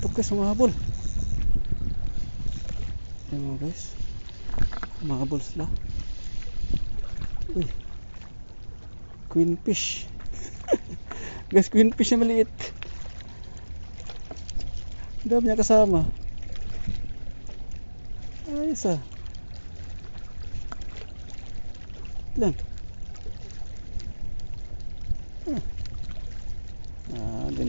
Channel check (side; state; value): both; inverted; correlation -1.00